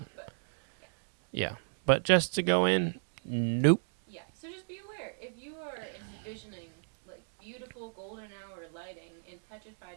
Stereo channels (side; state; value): left; silent; digital silence